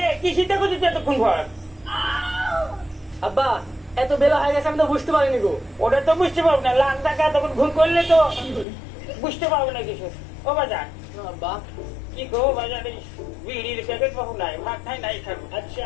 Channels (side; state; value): right; drops out; at 8.7 s